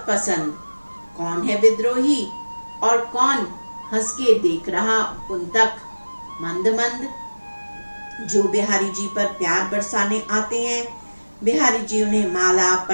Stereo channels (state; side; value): inverted; both; correlation -1.00